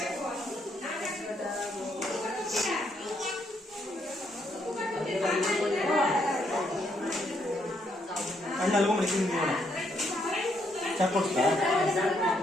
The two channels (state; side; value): normal; both; correlation 0.74